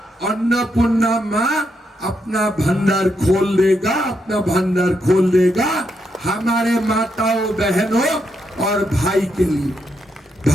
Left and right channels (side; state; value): both; normal; correlation 0.80